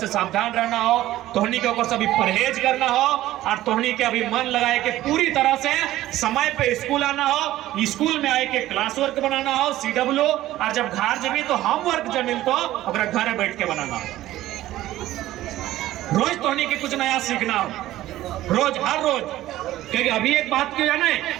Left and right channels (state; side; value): quieter; left; 14.9 dB